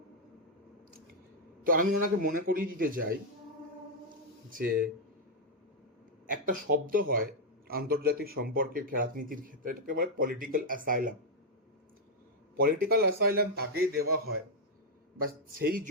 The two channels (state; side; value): normal; both; correlation -0.02